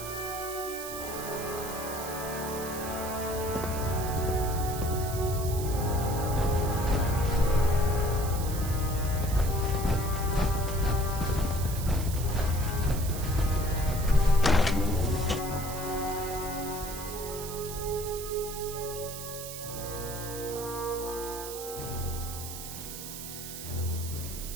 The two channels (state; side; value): noise; right; hiss, 9 dB below the sound